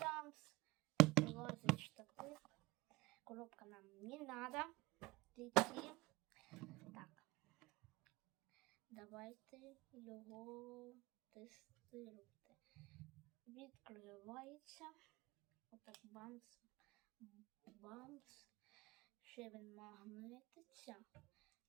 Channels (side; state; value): left; quieter; 21.2 dB